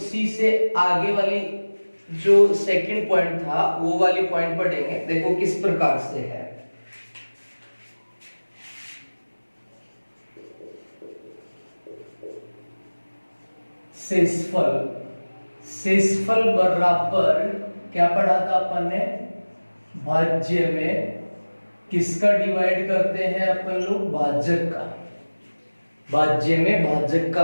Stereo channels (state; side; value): inverted; both; correlation -1.00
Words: से आगे वाली जो सेकंड पॉइंट था वो वाली पॉइंट पढ़ेंगे। देखो किस प्रकार से है। शेषफल बराबर क्या पढ़ा था अपन ने? भाज्य में किसका डिवाइड करते हैं अपन लोग? भाजक का। भाज्य में भाजक का